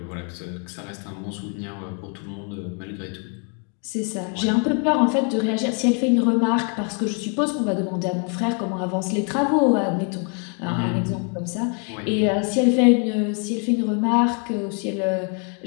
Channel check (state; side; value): quieter; right; 39.3 dB